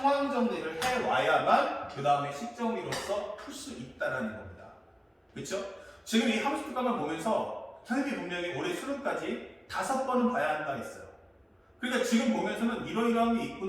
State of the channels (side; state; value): both; identical; correlation 1.00